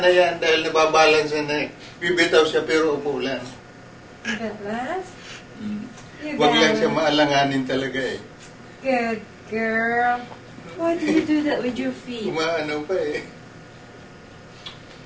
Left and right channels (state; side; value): identical; both; correlation 1.00